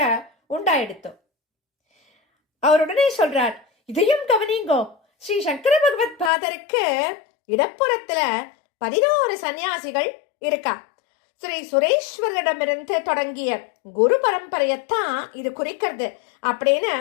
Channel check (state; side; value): drops out; right; at 6.3 s